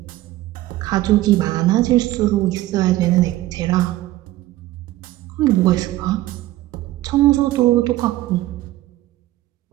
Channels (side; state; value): left; quieter; 16.1 dB